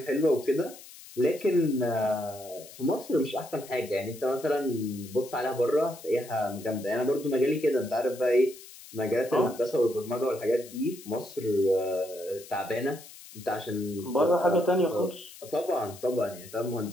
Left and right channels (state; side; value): noise; left; hiss, 18 dB below the sound